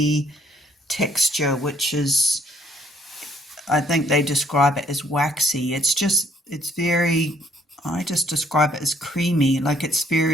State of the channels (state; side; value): normal; both; correlation 0.65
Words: texture, which is, I think they describe it as waxy. It's very, I just describe it as creamy, like it's